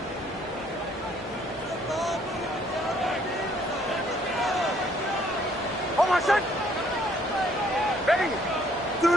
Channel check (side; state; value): both; normal; correlation 0.64